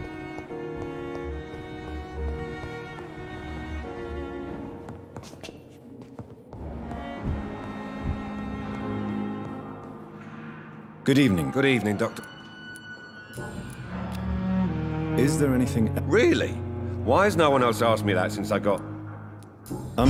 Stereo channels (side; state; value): both; identical; correlation 1.00